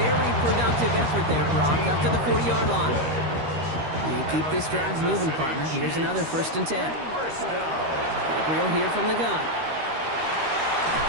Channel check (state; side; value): late; left; 13 ms